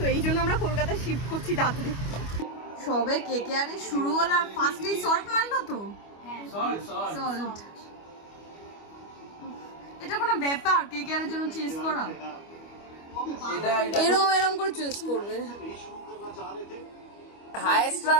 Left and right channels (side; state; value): right; late; 25 ms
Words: এই জন্য আমরা কলকাতায় শিফট করছি তাড়াতাড়ি। সবে কেকেআরে শুরু হলো আর ফার্স্টেই সল্ট মারলো তো। সল্ট এটা কোনো ব্যাপার কেকেআরের জন্য চেস করা? এরম এরম করে চেস করবে। হাইয়েস্ট